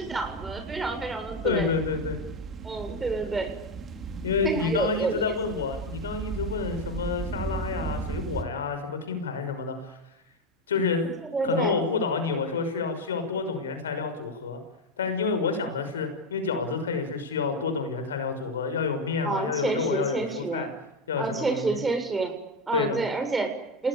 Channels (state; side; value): normal; both; correlation 0.11